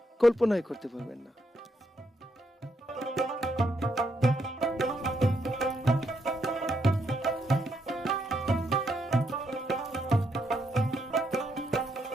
কল্পনাই করতে পারবেন না।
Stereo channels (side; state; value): both; normal; correlation 0.77